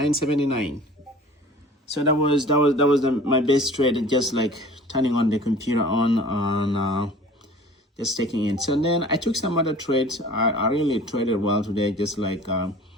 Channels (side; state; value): both; normal; correlation 0.46